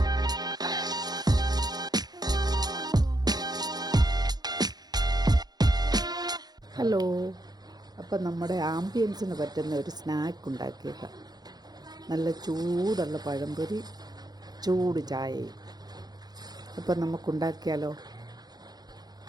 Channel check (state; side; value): late; left; 0.19 ms